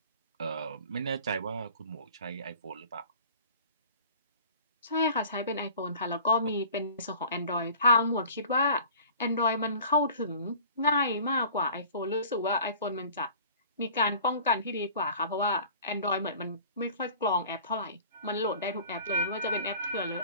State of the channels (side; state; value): both; inverted; correlation -0.45